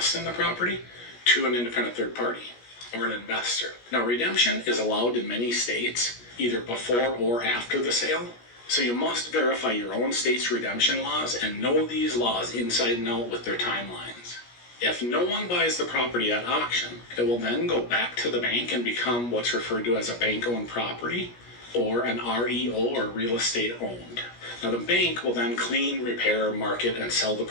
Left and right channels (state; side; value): late; right; 17 ms